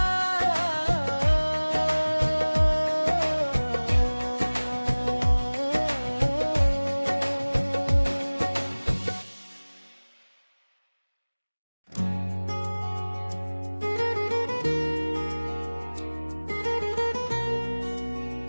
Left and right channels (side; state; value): both; inverted; correlation -1.00